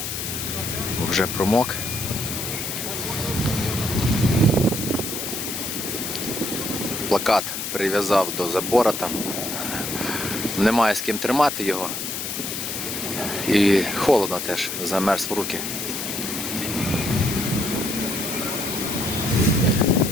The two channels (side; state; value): left; noise; hiss, 4 dB below the sound